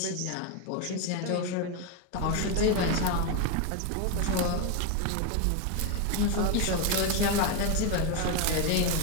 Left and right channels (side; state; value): both; different; correlation 0.02